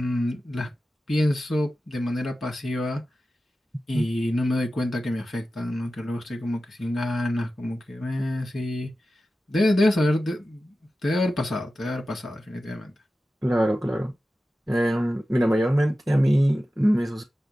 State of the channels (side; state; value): both; normal; correlation 0.94